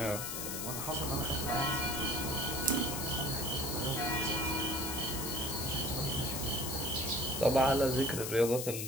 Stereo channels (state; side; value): noise; left; hiss, 4 dB below the sound